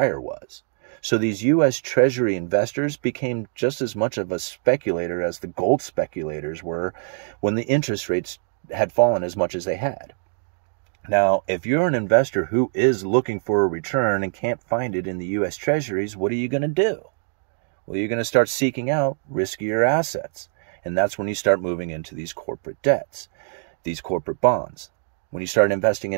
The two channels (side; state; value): left; silent; digital silence